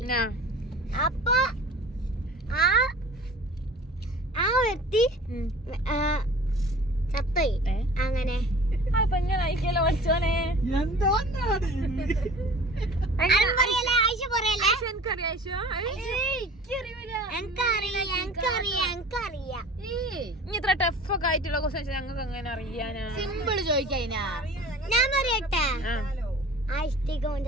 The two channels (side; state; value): both; normal; correlation 0.43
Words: അപ്പൊ ആ വ്യക്തി ചത്തോയി. അങ്ങനെ ഇത്ര ടഫൊക്കെ ആയിട്ടുള്ള ക്വസ്റ്റ്യൻസ് ഞങ്ങൾക്ക് എങ്ങനെ അറിയാനാ? സിമ്പിൾ ചോദിക്കാ. ഞാൻ പറയട്ടെ, ആ ഇഷ്ടിക